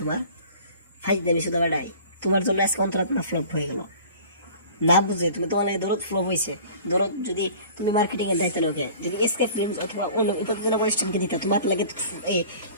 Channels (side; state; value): both; inverted; correlation -0.45